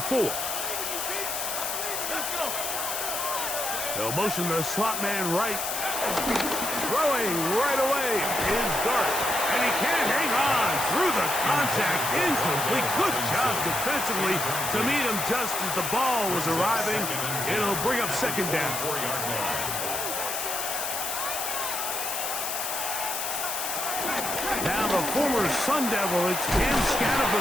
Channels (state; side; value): noise; left; hiss, 3 dB below the sound